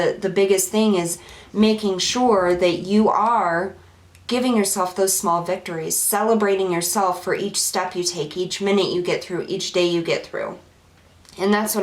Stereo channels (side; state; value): both; identical; correlation 1.00